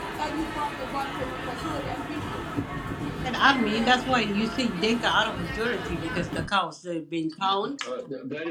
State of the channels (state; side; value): identical; both; correlation 1.00